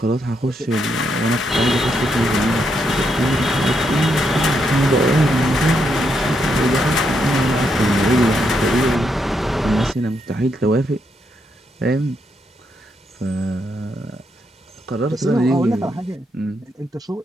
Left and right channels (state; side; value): normal; both; correlation 0.79